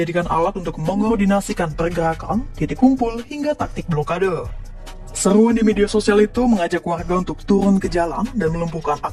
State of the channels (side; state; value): both; identical; correlation 1.00